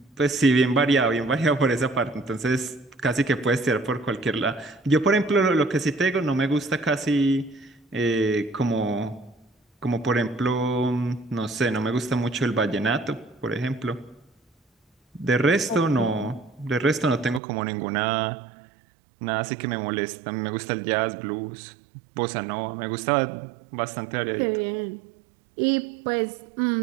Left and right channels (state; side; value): drops out; left; at 17.4 s